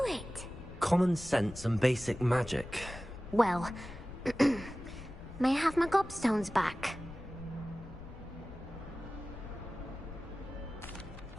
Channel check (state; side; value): noise; left; rumble, 15 dB below the sound